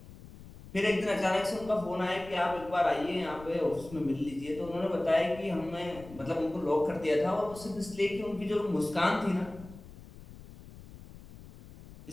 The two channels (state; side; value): noise; left; rumble, 18 dB below the sound